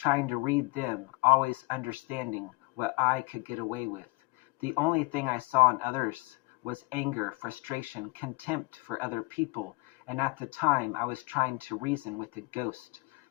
to read them, always understanding what I could get away with. The only thing I saw in others was anger, frustration, contempt for other people, and at the time I was trying to reason with a ghost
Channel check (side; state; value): right; quieter; 25.6 dB